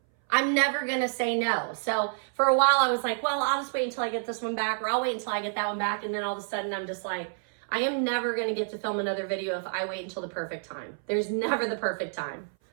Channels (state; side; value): silent; left; 59 dB below the other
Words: I'm never going to say no. So for a while I was like, well, I'll just wait until I get this one back or I'll wait until I get that one back. And then all of a sudden I'm just like, I am never going to get to film another video if I wait until the perfect time. There's never the perfect time.